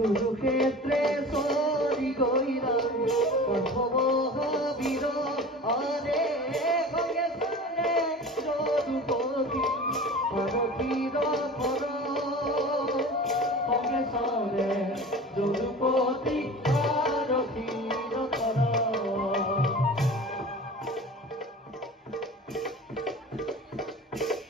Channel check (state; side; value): normal; both; correlation 0.37